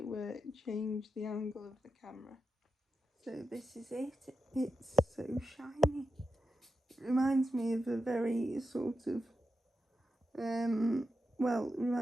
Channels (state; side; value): normal; both; correlation 0.89